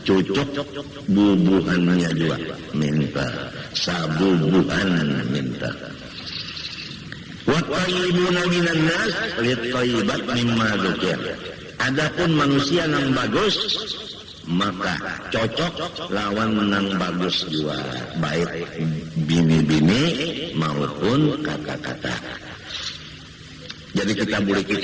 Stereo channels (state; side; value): identical; both; correlation 1.00